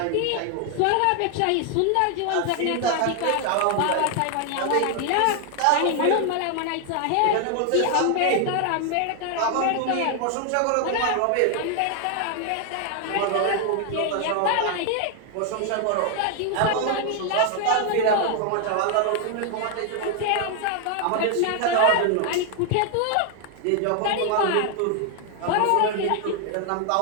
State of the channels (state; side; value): different; both; correlation 0.00